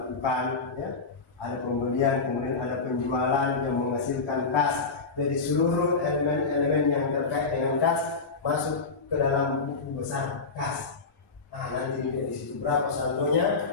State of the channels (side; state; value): right; quieter; 4.3 dB